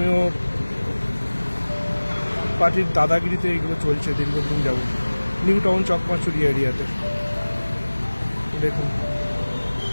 পার্টির দাদাগিরিতে এগুলো চলছে দীর্ঘদিন যাবত নিউ টাউন চকমাচুরি এরিয়াতে। দেখুন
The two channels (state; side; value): inverted; both; correlation -1.00